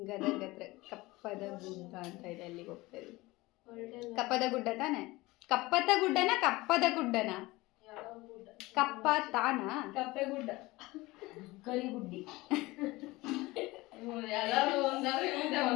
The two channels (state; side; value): quieter; right; 20.8 dB